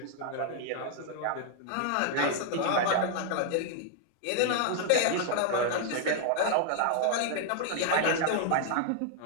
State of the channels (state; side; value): different; both; correlation -0.01